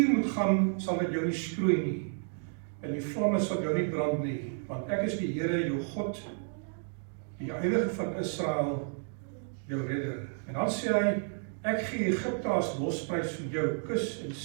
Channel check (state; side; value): silent; left; 57 dB below the other